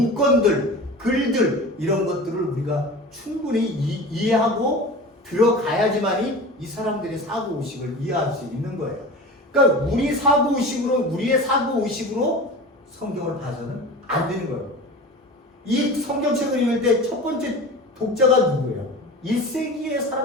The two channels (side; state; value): both; normal; correlation 0.34